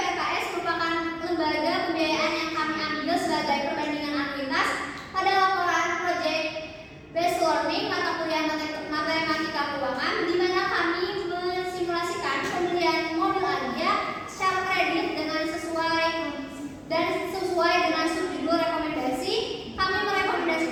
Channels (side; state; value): both; identical; correlation 1.00